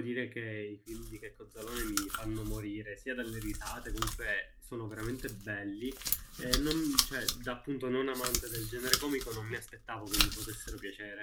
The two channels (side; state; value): both; identical; correlation 1.00